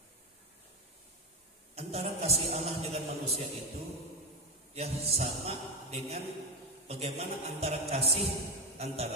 antara kasih Allah dengan manusia itu, ya, sama dengan bagaimana antara kasih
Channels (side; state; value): both; normal; correlation 0.14